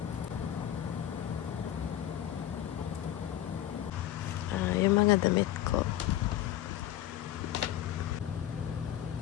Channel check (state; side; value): quieter; right; 12.4 dB